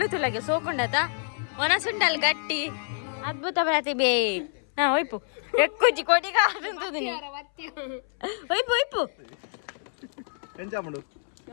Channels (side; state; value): right; silent; 60 dB below the other